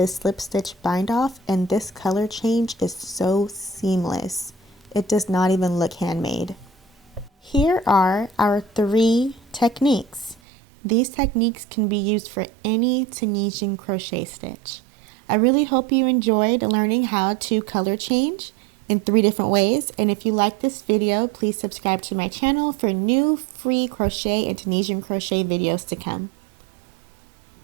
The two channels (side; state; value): left; drops out; at 10.4 s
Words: a slip stitch bind off and this color change is so seamless. It does not even look handmade. Here are our 3 techniques. These techniques can be used for any Tunisian crochet stitch. I really hope you enjoyed learning how to color change in 3 different ways, and if you like this video, please subscribe to my channel for new free crochet and Tunisian crochet videos to come.